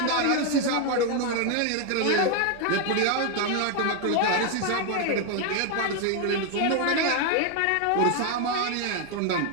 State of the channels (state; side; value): different; both; correlation 0.01